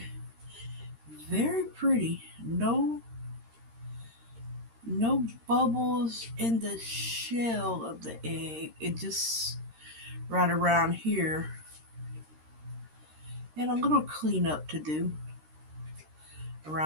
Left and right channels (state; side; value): late; left; 13 ms